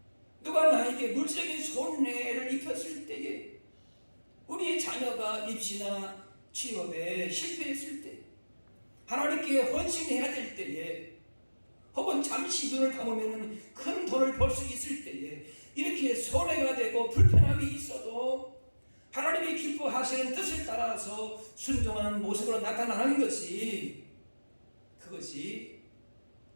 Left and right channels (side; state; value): both; inverted; correlation -1.00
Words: 누가 나에게 물질적인 손해를 입혔을 때에, 우리의 자녀가 입시나 취업에 실패했을 때, 하나님께 헌신해야 될 때에, 혹은 잠시 눈을 감으면 큰 돈을 벌 수 있을 때에 이렇게 손해가 되고 불편함이 있어도 하나님이 기뻐하시는 뜻을 따라서 순종하는 모습으로 나타나는 것이, 그것이